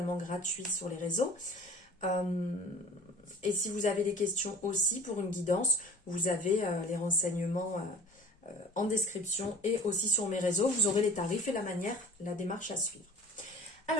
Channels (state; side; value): normal; both; correlation 0.43